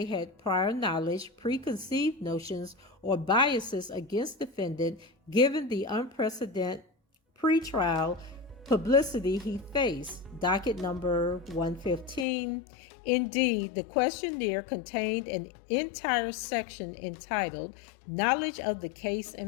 had prior knowledge, preconceived notions, or biases against defendant given the unprecedented pretrial publicity he faced. Docket number 115. Indeed, the questionnaire contained an entire section entitled Knowledge of the Case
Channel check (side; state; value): right; drops out; at 12.2 s